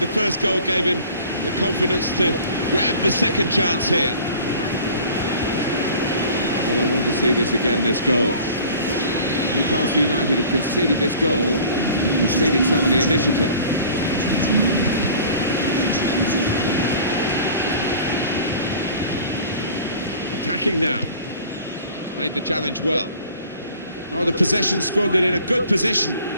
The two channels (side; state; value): both; inverted; correlation -0.46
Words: the first goal gave him the confidence to grab the second chance here. Well, I want to see this again, this goal. Newcastle United have conceded this goal, conceded some of the initiative. Attacking now. Made the challenge well. Oh, the possession squandered in a good position.